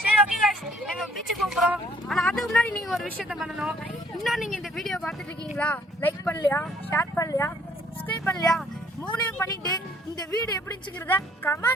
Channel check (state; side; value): normal; both; correlation 0.62